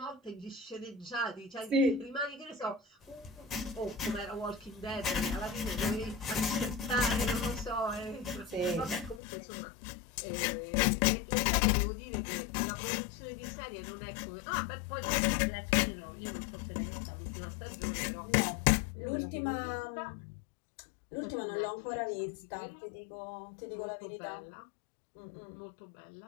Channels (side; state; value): right; drops out; at 9.2 s